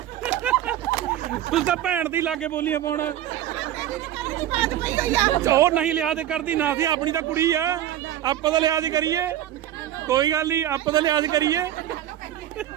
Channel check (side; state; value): left; quieter; 12.3 dB